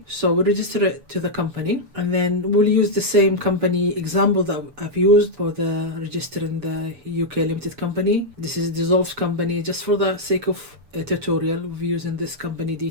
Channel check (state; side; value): late; left; 6.9 ms